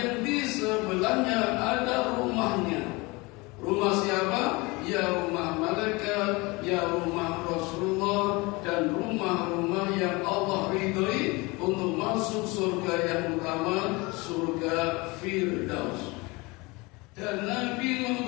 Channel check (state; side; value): quieter; right; 24.9 dB